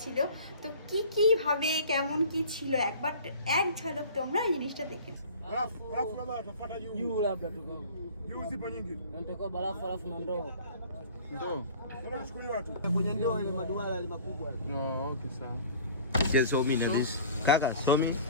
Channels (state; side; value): inverted; both; correlation -0.44